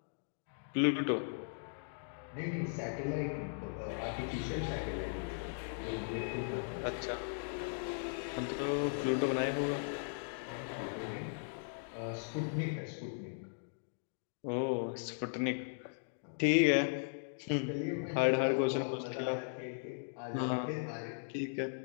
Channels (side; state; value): right; silent; digital silence